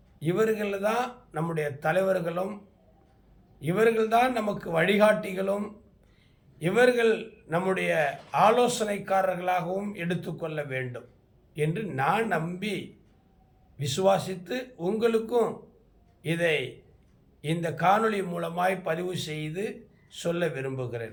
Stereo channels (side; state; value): both; identical; correlation 1.00